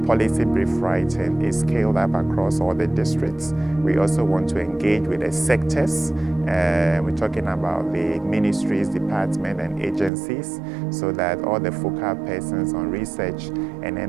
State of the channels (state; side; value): drops out; left; at 10.1 s